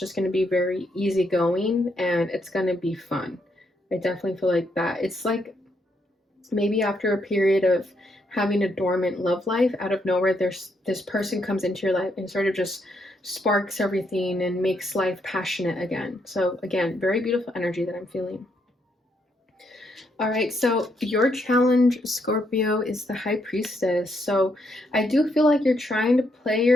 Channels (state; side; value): normal; both; correlation 0.76